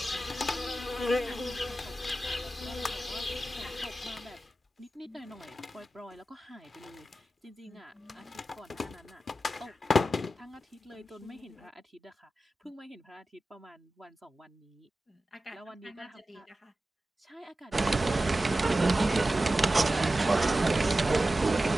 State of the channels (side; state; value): both; normal; correlation 0.94